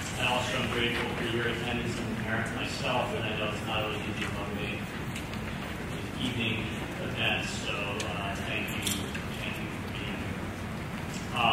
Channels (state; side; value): identical; both; correlation 1.00